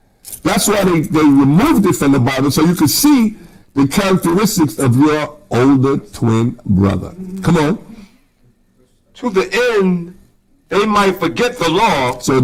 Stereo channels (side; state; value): both; identical; correlation 1.00